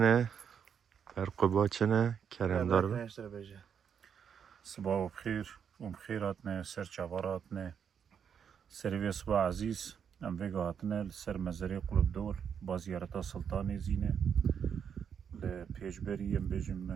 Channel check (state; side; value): quieter; left; 7.6 dB